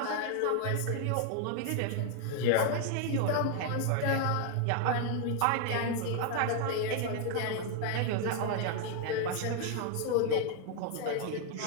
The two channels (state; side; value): different; both; correlation 0.00